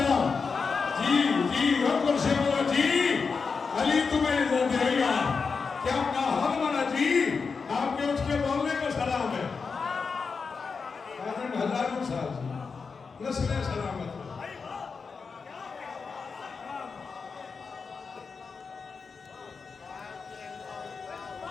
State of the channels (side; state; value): right; quieter; 5.1 dB